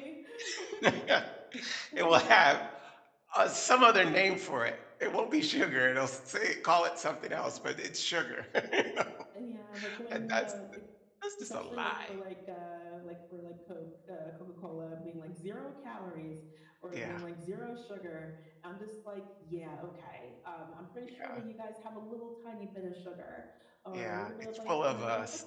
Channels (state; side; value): identical; both; correlation 1.00